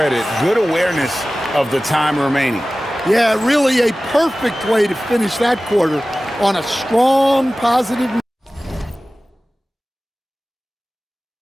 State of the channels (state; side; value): normal; both; correlation 0.97